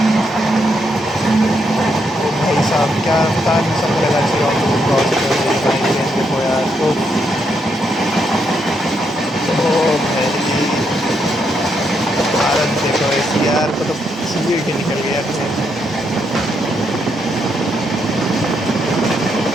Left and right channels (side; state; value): both; normal; correlation 0.78